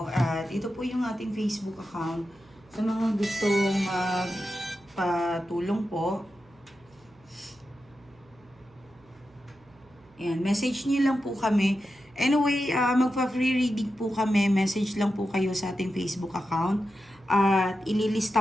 At ito po yung ating Facebook account. Sa mga gustong patulong po. Ayan, message niyo lang po kami. Anyway, magpa-free reading po kami. Message lang po kayo sa ating Facebook account. At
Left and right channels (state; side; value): noise; right; hum, 29 dB below the sound